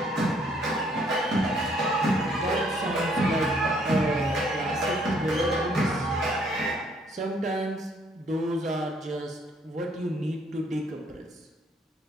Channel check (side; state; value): both; normal; correlation 0.65